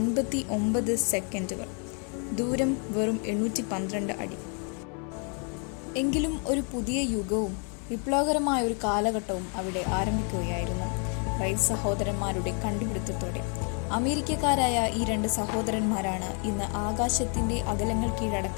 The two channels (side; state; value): right; quieter; 39.2 dB